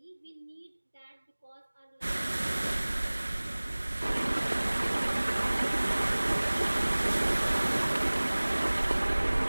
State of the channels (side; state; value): both; inverted; correlation -1.00